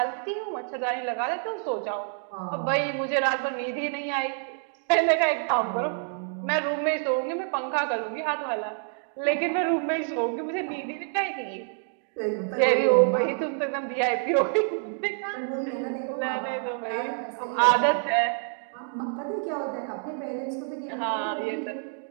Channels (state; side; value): silent; left; 60 dB below the other